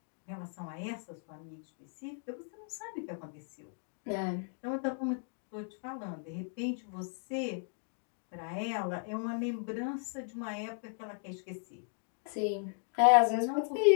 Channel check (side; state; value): right; silent; 54 dB below the other